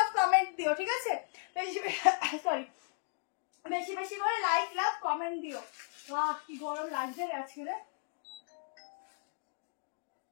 কমেন্ট দিও, ঠিক আছে, সরি, বেশি বেশি করে লাইক লাভ কমেন্ট দিও। কি গরম লাগছে আজকে রে,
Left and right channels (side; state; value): right; silent; digital silence